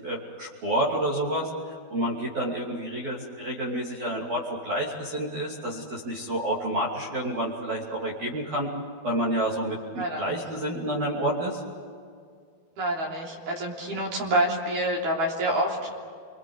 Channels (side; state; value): left; late; 12 ms